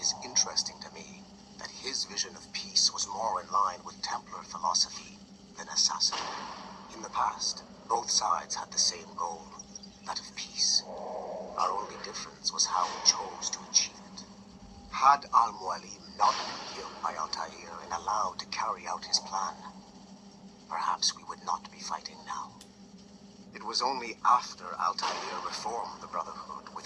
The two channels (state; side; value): identical; both; correlation 1.00